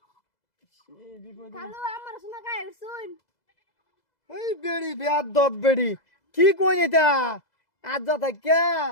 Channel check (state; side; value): late; right; 2.0 ms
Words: কালো আমার শোনা গায়ে শুন এই বেড়ি বিয়ার দব বেড়ি কি কই এটা আজ যা থাকে